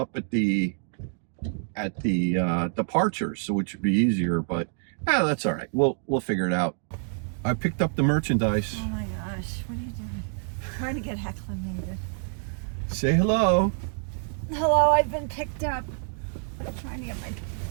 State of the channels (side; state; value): left; silent; 60 dB below the other